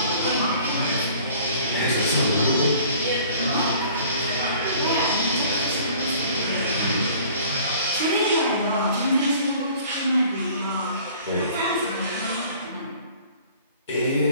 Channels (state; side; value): inverted; both; correlation -0.51